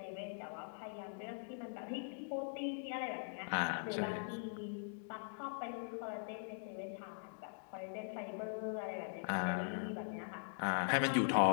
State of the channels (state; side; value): silent; right; digital silence